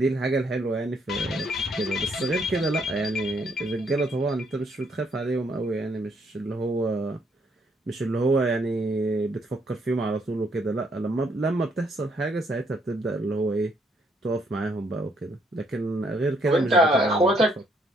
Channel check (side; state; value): both; normal; correlation 0.70